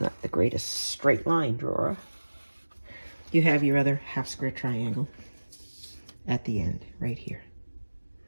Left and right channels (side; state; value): both; inverted; correlation -1.00